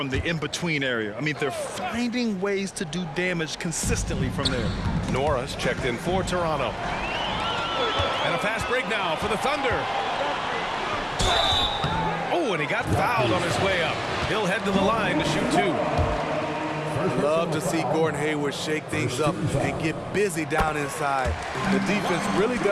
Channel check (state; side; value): identical; both; correlation 1.00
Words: the in-between area. I mean, they're finding ways to do damage consistently from there. Nora's checked in for Toronto. And a fast break now for the Thunder. Oh, and he got fouled on his way up. He'll head to the line to shoot 2. Love to see Gordon Hayward shake things up and get busy down inside. The defense really